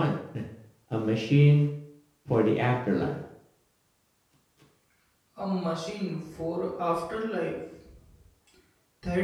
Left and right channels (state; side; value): identical; both; correlation 1.00